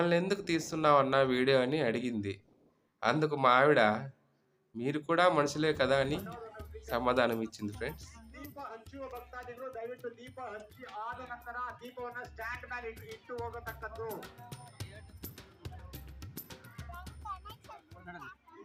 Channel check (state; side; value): identical; both; correlation 1.00